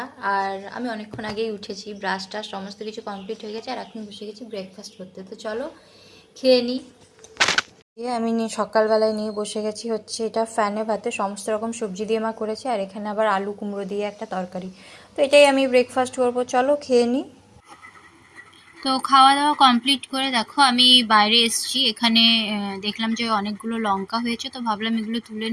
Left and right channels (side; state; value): both; identical; correlation 1.00